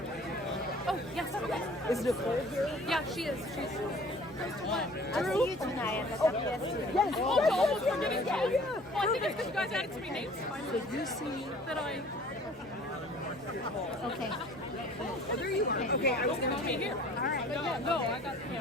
Oh, yes. Is Nicole here? Yeah, she is. She's close to what? I'll see you tonight at the WSC. Yes, Oh, almost forgetting you. Well, I think it's because you guys added so many names to my list So you see... that I... Okay. Oh, there you are. Okay, I was going to be here. All right. But yeah, no, I got...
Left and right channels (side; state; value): both; normal; correlation 0.50